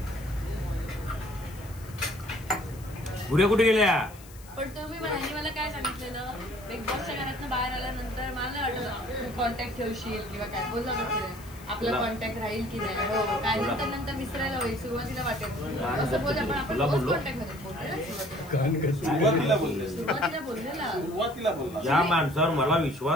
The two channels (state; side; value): noise; left; hiss, 21 dB below the sound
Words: पुढे कुठे गेल्या? पण तुम्ही मला काय सांगितलेलं बिग बॉसच्या घरातनं बाहेर आल्यानंतर मला नाही वाटलं कॉन्टॅक्ट ठेवशील किंवा काय बोलला आपला कॉन्टॅक्ट राहील की नाही. हो काय नंतर विसरायला होईल. सुरुवातीला वाटेल असं बोल आपण कॉन्टॅक्ट मध्ये सुरुवातीला बोललेला. ज्या माणसावर मला